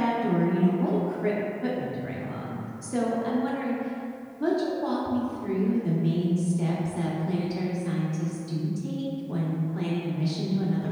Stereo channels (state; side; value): identical; both; correlation 1.00